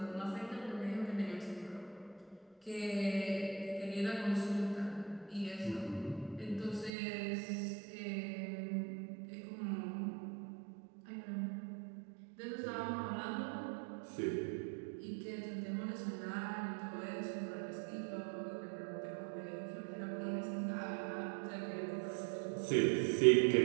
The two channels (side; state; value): left; drops out; at 6.9 s